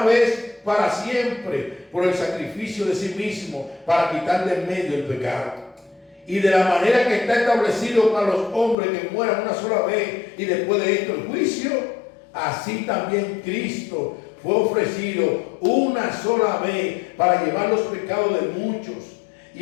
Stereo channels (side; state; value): right; drops out; at 8.8 s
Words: vez para siempre por el sacrificio de sí mismo para quitar de en medio el pecado. Y de la manera que está establecido para los hombres que mueran una sola vez y después de esto el juicio, así también Cristo fue ofrecido una sola vez para llevar los pecados de muchos,